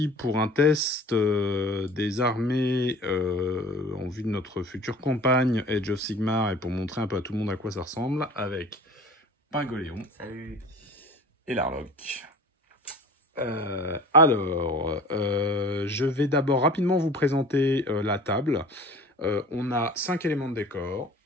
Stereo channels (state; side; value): normal; both; correlation 0.43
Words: pour un test des armées en vue de notre future campagne Age of Sigmar et pour montrer un peu à tout le monde à quoi ça ressemble avec Pingoléon. Salut. Et Larlock. Je vais d'abord rapidement vous présenter la table. On a 5 éléments de décor,